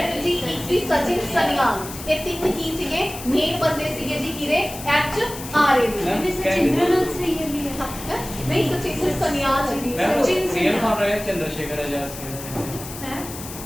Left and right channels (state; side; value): noise; left; hiss, 12 dB below the sound